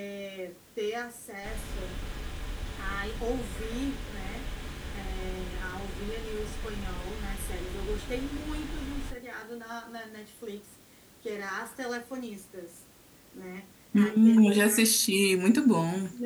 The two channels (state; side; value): identical; both; correlation 1.00